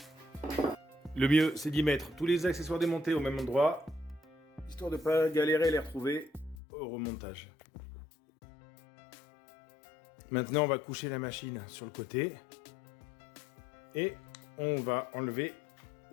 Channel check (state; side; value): drops out; right; at 6.6 s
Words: Le mieux, c'est d'y mettre tous les accessoires démontés au même endroit, histoire de ne pas galérer à les retrouver au remontage. Maintenant, on va coucher la machine sur le côté et on va enlever